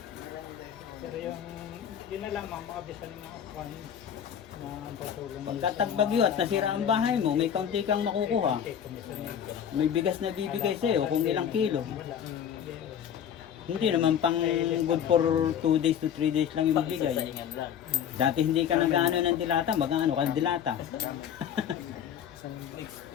yung yun na lamang makabisan ng mga kwan na patulong. pagkatagbagyo at nasira ang bahay mo, may kaunti kang makukuha. May bigas na bibigay sa'yo kung ilang kilo. Hindi naman pang good for 2 days to 3 days lang yung bibigay. Saingan lang. Dati hindi ka nag-ano ng dilata, mag-ano ka ng dilata. Next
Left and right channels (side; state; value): right; quieter; 8.9 dB